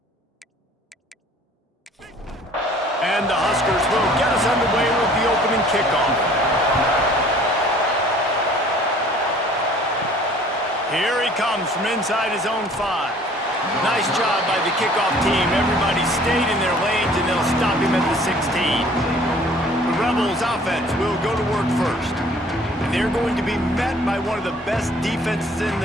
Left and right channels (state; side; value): normal; both; correlation 0.53